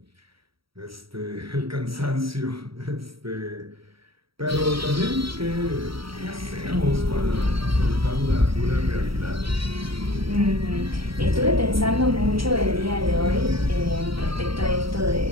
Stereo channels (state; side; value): late; left; 0.75 ms